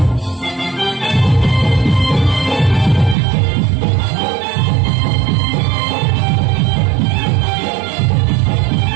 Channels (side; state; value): left; drops out; at 3.2 s